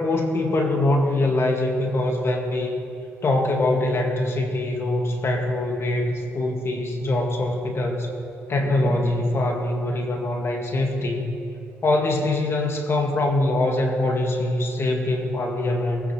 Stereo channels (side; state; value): both; normal; correlation 0.78